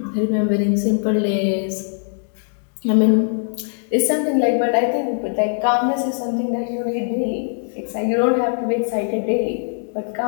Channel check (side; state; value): right; silent; digital silence